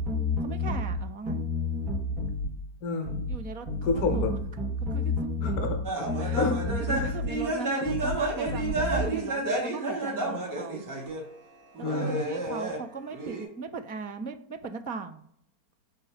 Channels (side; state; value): right; late; 4.4 ms